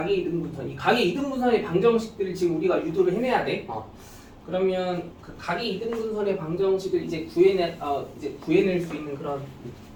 이등분선, 이 각의 이등분선의 방정식들을 지금 우리가 유도를 해내야 돼. 그러면 그 각의 이등분선의 방정식을 이제 구해낼 수 있는 그런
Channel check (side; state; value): both; identical; correlation 1.00